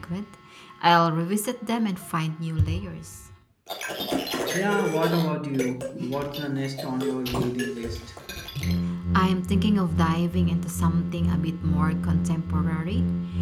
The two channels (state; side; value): identical; both; correlation 1.00